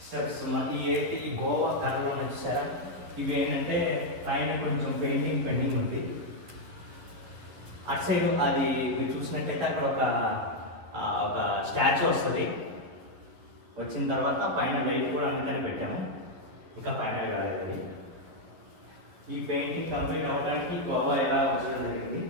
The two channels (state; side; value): late; left; 11 ms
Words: స్టెప్స్ ఈ గోవా కర్రలో చూసారా, ఇవి ఏంటంటే పైన కొంచెం పెయింటింగ్ ఉంది. అటు సైడ్ అది మీరు చూసినట్టయితే అక్కడ ఒక స్టాచ్యూ వస్తుంది. వచ్చిన తర్వాత పైన లైట్ కూడా అందుకని పెట్టాము, ఇంకా ఫైనల్ కాలేదు. ఈ పెయింటింగ్ కంప్లీట్ అవ్వడానికి గోవా ఎలా వచ్చడం జరిగింది.